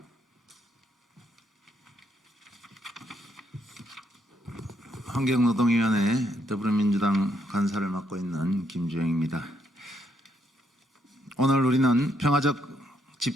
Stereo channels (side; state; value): both; normal; correlation 0.74